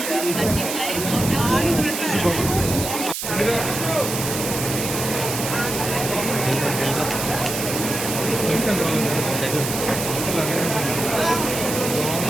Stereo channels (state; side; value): noise; right; hiss, 4 dB below the sound